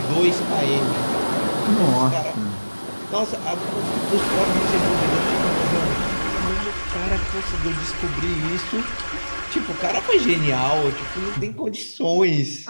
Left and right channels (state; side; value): inverted; both; correlation -1.00